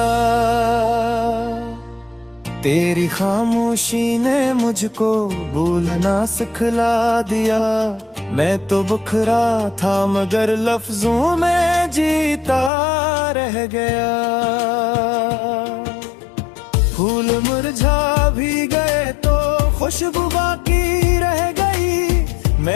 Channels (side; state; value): right; drops out; at 12.7 s